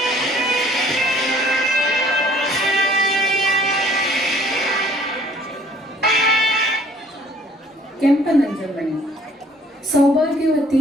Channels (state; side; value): normal; both; correlation 0.57